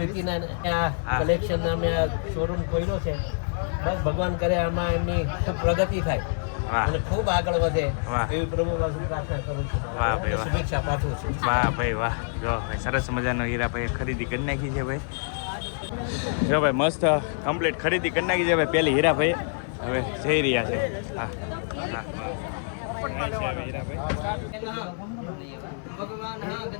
કલેક્શન નામે આ શોરૂમ ખોલ્યો છે. બસ ભગવાન કરે આમાં એમની ખૂબ પ્રગતિ થાય અને ખૂબ આગળ વધે એવી પ્રભુ પાસે પ્રાર્થના કરું છું. વાહ ભાઈ વાહ. શુભેચ્છા પાઠવું છું. વાહ ભાઈ વાહ. જો ભાઈ સરસ મજાનો હીરાભાઈએ ખરીદી કરી નાખી છે ભાઈ. જો ભાઈ મસ્ત કમ્પ્લીટ ખરીદી કરી નાખી છે ભાઈ. પહેલી હીરાભાઈ હવે જઈ રહ્યા છે. હા વાહ હીરાભાઈ. ભગવાન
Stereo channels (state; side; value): silent; right; digital silence